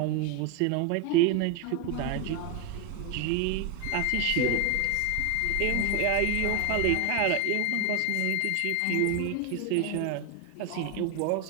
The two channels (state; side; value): different; both; correlation 0.01